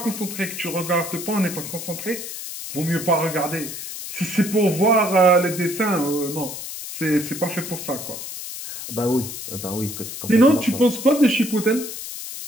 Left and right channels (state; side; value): noise; left; hiss, 8 dB below the sound